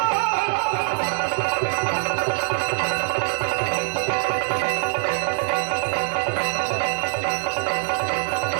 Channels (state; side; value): silent; left; 57 dB below the other